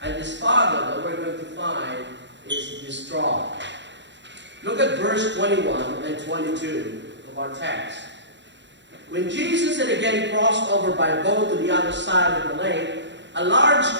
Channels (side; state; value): left; late; 0.53 ms